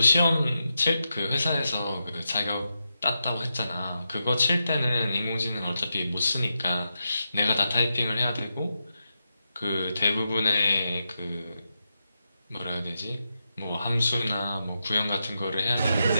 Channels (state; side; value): inverted; both; correlation -0.87